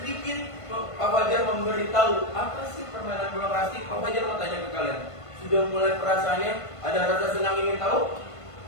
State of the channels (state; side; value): late; right; 1.5 ms